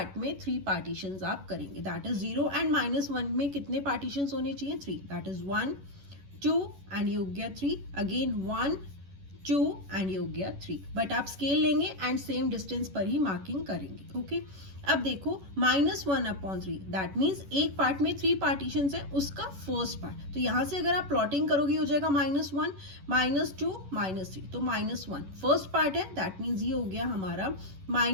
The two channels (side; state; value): left; late; 11 ms